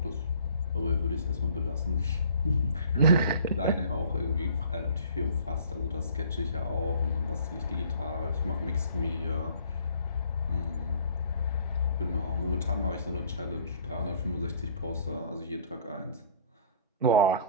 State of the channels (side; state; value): both; inverted; correlation -0.53